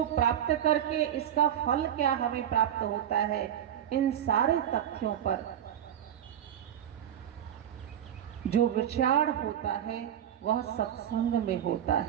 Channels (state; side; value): quieter; left; 10.2 dB